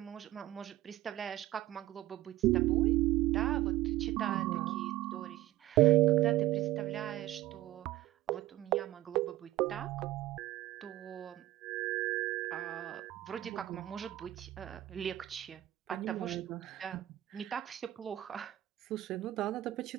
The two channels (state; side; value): quieter; left; 15.4 dB